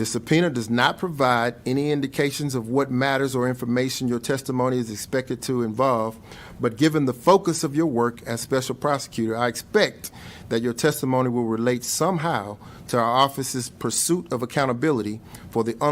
subpoena does not provide any indications of what matters or information your testimony is expected to involve, but given the focus of your work as special prosecutor, I expect that your testimony will relate somehow to our office's pursuit of accountability for the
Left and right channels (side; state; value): both; identical; correlation 1.00